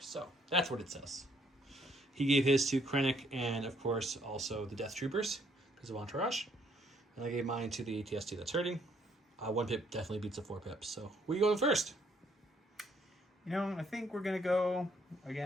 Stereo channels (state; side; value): normal; both; correlation 0.68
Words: So that's what it says. He gave his to Krennic and, of course, also the Death Troopers because of Entourage. And I gave mine to the ATST that's hurting. 1 pip definitely beats a 4 pips. So where you going first? You know, I think we're going to go,